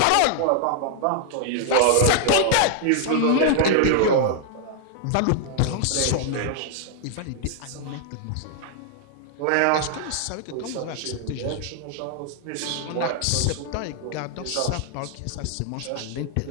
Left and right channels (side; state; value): both; different; correlation 0.00